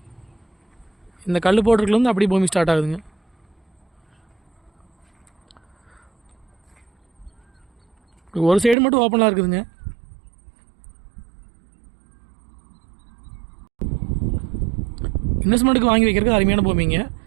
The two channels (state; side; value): drops out; left; at 8.8 s